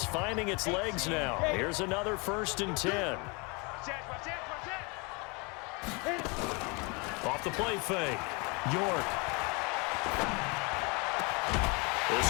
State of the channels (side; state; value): right; quieter; 30.0 dB